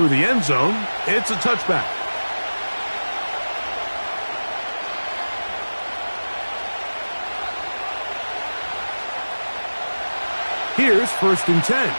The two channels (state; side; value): inverted; both; correlation -1.00